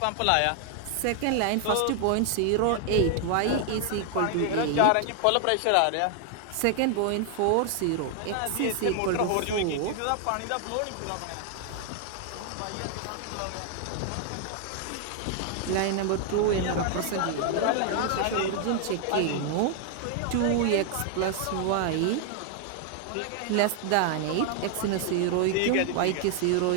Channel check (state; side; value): different; both; correlation 0.00